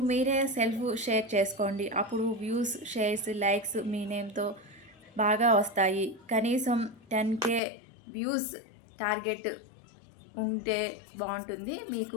మీరే సెల్ఫ్ షేర్ చేసుకోండి. అప్పుడు వ్యూస్, షేర్స్, లైక్స్ మీ నేమ్తో బాగా వస్తాయి. కనీసం 10K వ్యూస్ టార్గెట్ ఉంటే బాగుంటుంది. మీకు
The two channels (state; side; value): drops out; right; at 7.6 s